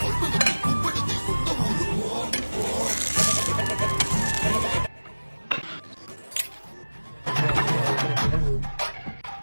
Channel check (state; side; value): inverted; both; correlation -1.00